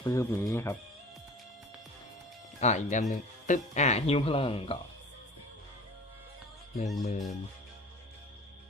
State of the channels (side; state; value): both; normal; correlation 0.42